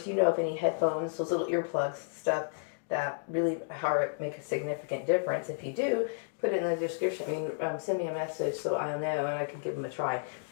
of any headphones, those little earplugs, stuff that really make a significant difference. If you do, put it in the description. Send me a message so I'll know, and I can give them a try.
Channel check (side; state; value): right; silent; digital silence